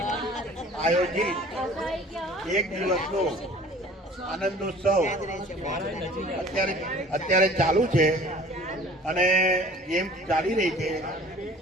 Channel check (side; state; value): both; normal; correlation 0.48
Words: એક દિવસનો આનંદોત્સવ અત્યારે ચાલુ છે અને ગેમ ચાલી રહી છે.